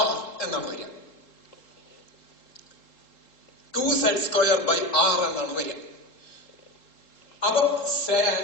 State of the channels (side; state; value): right; late; 3.8 ms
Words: എന്നാണ് വരിക. 2Z square by R എന്നാണ് വരിക. അപ്പൊ